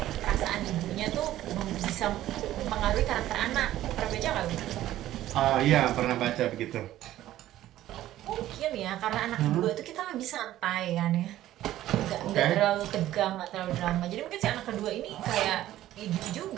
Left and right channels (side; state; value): left; quieter; 13.9 dB